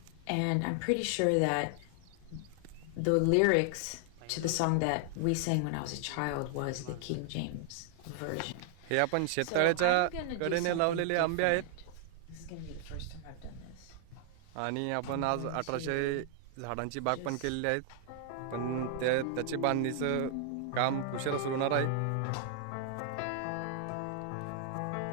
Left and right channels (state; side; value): different; both; correlation 0.00